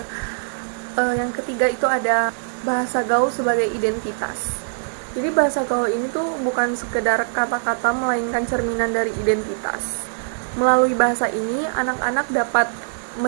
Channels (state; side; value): silent; left; 64 dB below the other